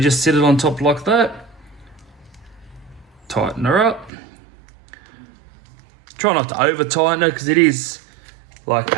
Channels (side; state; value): left; drops out; at 4.1 s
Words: just sit it on top like that, tighten her up. Try not to over tighten it, because it is like